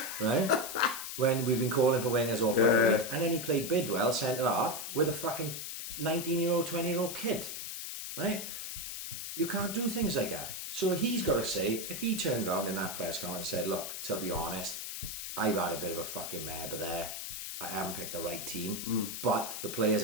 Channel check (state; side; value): noise; left; hiss, 6 dB below the sound